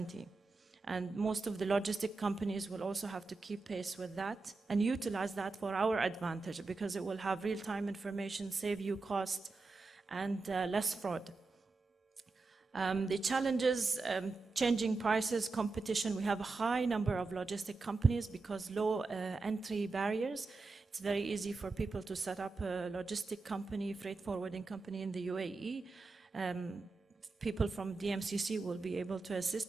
And most of the logistic companies will also have to keep pace with that and utilize that for our advantage, because it will have real-time information, save you cost, and less fraud. The challenges, changing prices, competition. We have a high number of logistic companies because low entry barriers. It's very easy for people to set up a logistic company, freight forwarding company in the UAE. People from DMCC will be able to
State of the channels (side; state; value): left; quieter; 3.9 dB